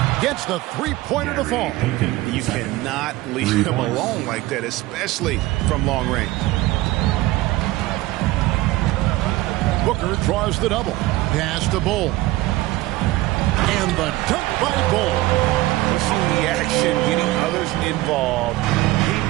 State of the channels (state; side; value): quieter; left; 18.3 dB